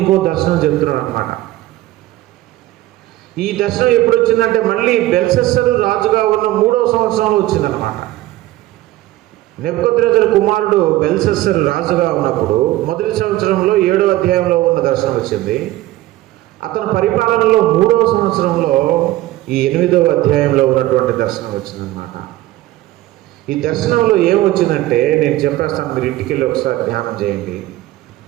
దర్శనం చెప్తున్నాడు అన్నమాట. ఈ దర్శనం ఎప్పుడు వచ్చిందంటే మళ్ళీ బెల్షస్సరు రాజుగా ఉన్న 3వ సంవత్సరంలో వచ్చిందనమాట. నెబుకద్నెజరు కుమారుడు బెల్షస్సరు రాజుగా ఉన్నప్పుడు మొదటి సంవత్సరంలో 7వ అధ్యాయంలో ఉన్న దర్శనం వచ్చింది. అతని పరిపాలనలో 3వ సంవత్సరంలో ఈ 8వ అధ్యాయంలో ఉన్నటువంటి దర్శనం వచ్చిందనమాట. ఈ దర్శనంలో ఏమొచ్చిందంటే నేను చెప్పేస్తాను, మీరు ఇంటికి వెళ్ళి ఒకసారి ధ్యానం చేయండి.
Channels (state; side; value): quieter; left; 16.2 dB